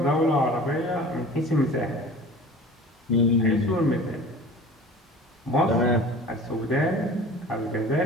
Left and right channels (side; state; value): both; normal; correlation 0.41